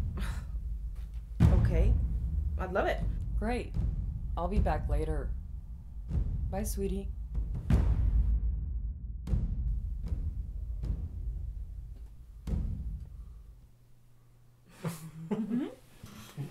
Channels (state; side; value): identical; both; correlation 1.00